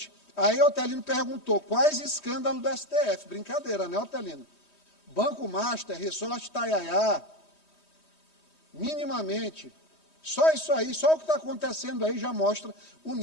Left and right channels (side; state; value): right; late; 3.2 ms